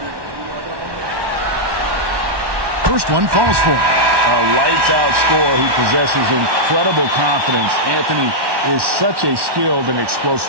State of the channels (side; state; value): left; late; 1.1 ms